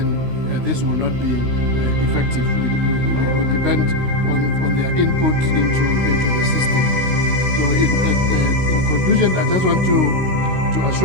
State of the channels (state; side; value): late; left; 16 ms